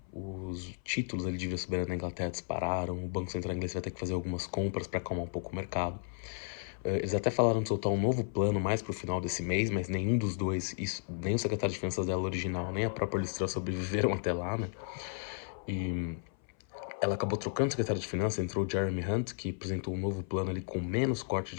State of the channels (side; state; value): right; silent; 55 dB below the other